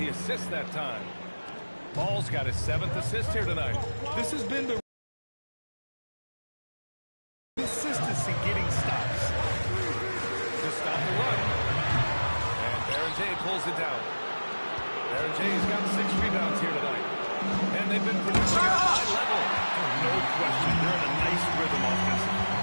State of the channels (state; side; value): inverted; both; correlation -1.00